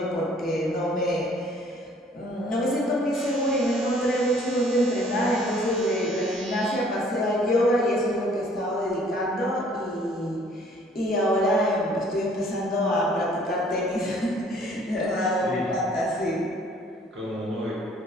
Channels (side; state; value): both; normal; correlation 0.58